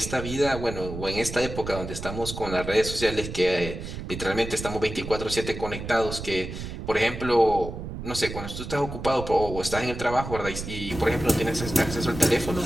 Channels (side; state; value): right; noise; rumble, 8 dB below the sound